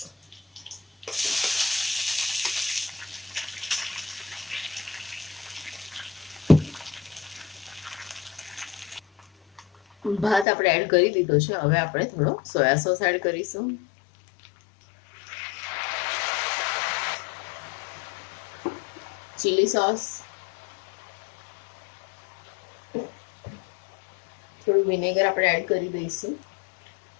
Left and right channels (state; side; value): drops out; right; at 10.5 s